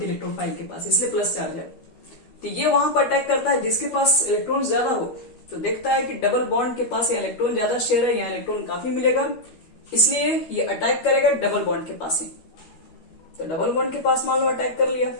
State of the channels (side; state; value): right; late; 13 ms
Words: है इलेक्ट्रोफाइल के पास, इसलिए प्लस चार्ज है। तो ये वहां पर अटैक करता है जिसके पास इलेक्ट्रॉन ज्यादा हो। तो देखता है कि डबल बॉन्ड के पास या इलेक्ट्रॉन ज्यादा शेयर है, यहाँ इलेक्ट्रॉन काफी मिलेगा, इसलिए ये अटैक करेगा डबल बॉन्ड के पास ही। तो डबल बॉन्ड के पास मान लो अटैक कर लिया,